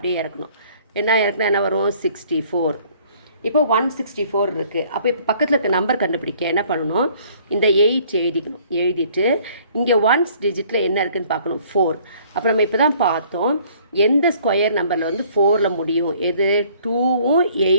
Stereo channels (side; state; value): both; inverted; correlation -0.58